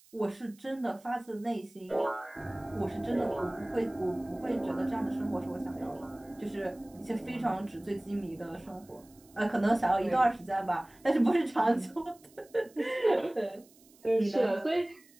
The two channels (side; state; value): right; noise; hiss, 27 dB below the sound